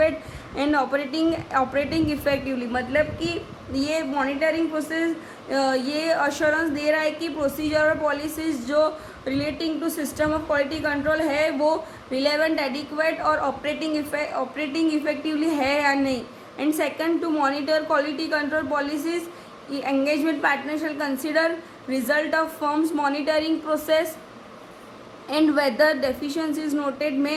and operating effectively. मतलब कि ये monitoring process ये assurance दे रहा है कि procedure और policies जो relating to system of quality control है वो रिलेवेंट, एडिक्वेट और ऑपरेटिंग इफेक्टिवली है या नहीं. And second, to monitor quality control policies engagement partner shall consider result of firm's monitoring process and whether deficiencies noted may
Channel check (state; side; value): identical; both; correlation 1.00